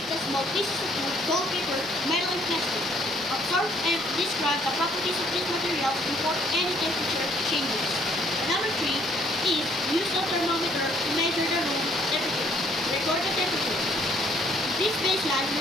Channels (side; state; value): both; normal; correlation 0.64